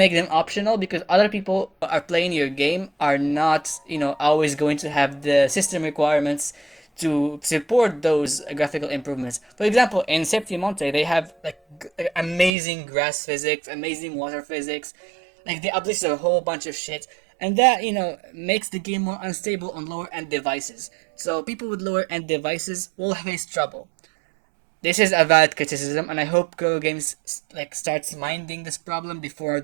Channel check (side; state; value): left; drops out; at 12.5 s